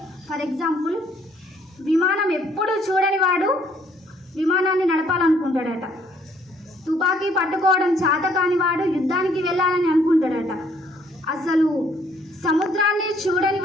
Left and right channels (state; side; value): normal; both; correlation 0.64